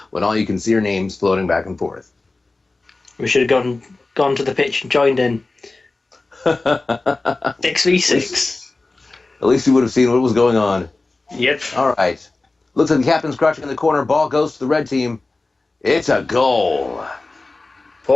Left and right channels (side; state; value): right; quieter; 3.3 dB